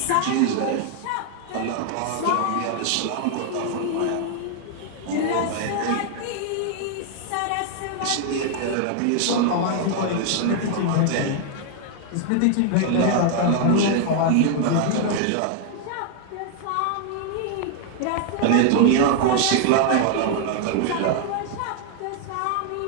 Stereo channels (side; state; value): both; different; correlation 0.00